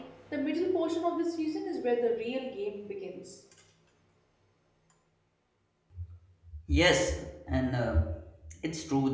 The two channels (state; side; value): identical; both; correlation 1.00